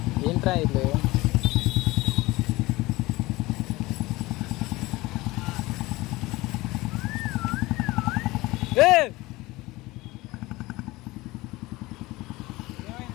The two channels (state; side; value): quieter; right; 20.4 dB